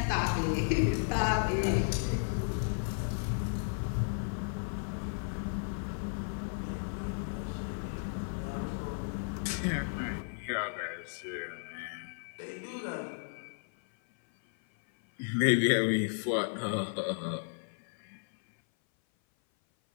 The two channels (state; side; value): silent; right; 55 dB below the other